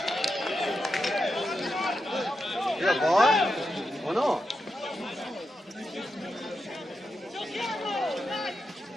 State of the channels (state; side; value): normal; both; correlation 0.87